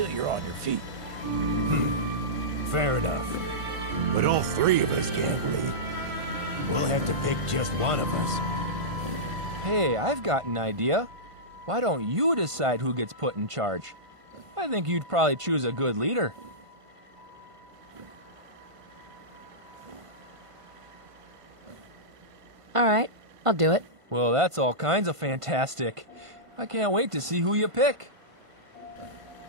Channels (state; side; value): late; left; 1.5 ms